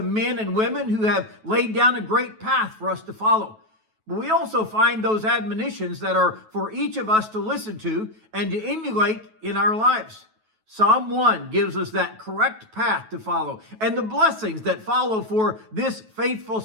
men and women who have laid down a great path for us to follow. But we also find those admonitions that are for each of us to listen to and to emulate in our lives. Psalm 1 gives us that correct path to follow and the blessings that follow for this faithful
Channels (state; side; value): late; left; 9.2 ms